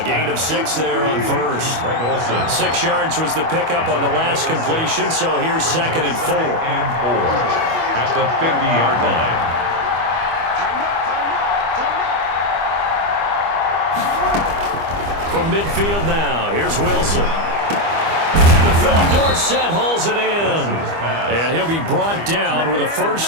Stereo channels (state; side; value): late; left; 25 ms